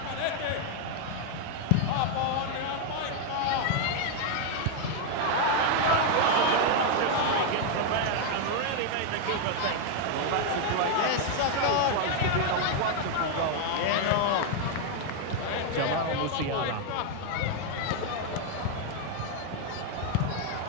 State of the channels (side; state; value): both; different; correlation 0.01